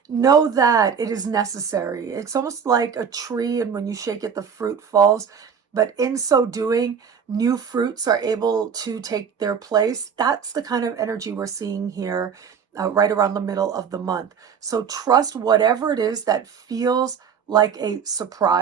know that it is necessary. It's almost like a tree, and when you shake it, the fruit falls. But in so doing, new fruits are able to take their place. That's the kind of energy we're seeing here right around the middle of the month. So trust whatever it is that feels like a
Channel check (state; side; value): quieter; left; 6.9 dB